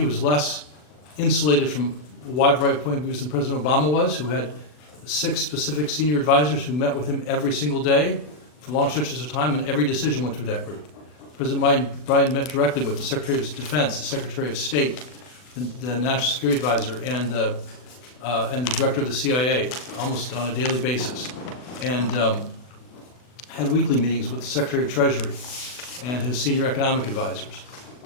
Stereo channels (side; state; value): right; late; 40 ms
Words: was less insulated from a wide variety of point of views than President Obama was, who had 6 specific senior advisors who met with him every single day for long stretches of time, and every decision went through that group. President Biden met directly with the Secretary of Defense, the Secretary of State, the National Security Advisor, and the Director of the CIA, almost on a daily basis, and had weekly meetings with the Secretary of Treasury and his senior economic advisors.